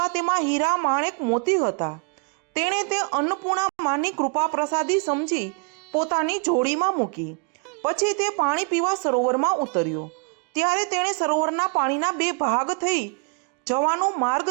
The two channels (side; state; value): left; quieter; 35.7 dB